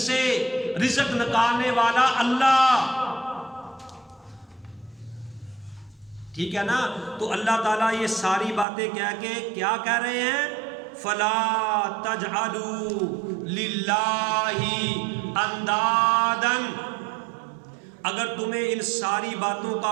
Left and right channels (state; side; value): drops out; left; at 8.7 s